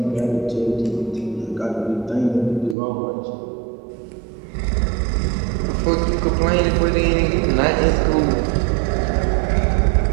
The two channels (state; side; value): drops out; left; at 2.8 s